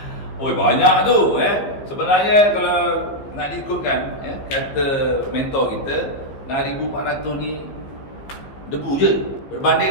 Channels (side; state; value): right; late; 15 ms